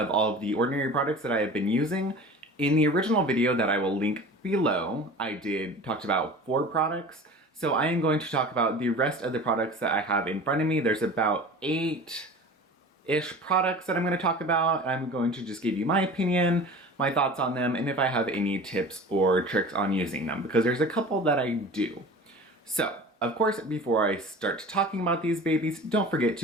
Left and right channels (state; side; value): normal; both; correlation 0.39